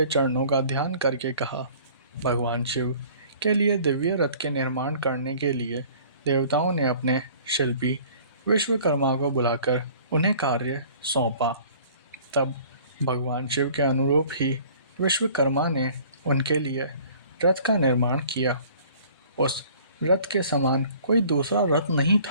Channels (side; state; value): both; inverted; correlation -0.51